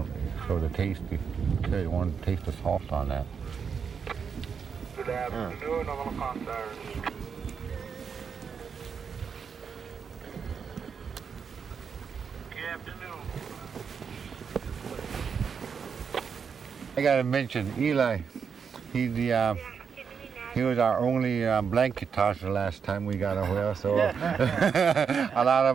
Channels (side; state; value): left; quieter; 6.5 dB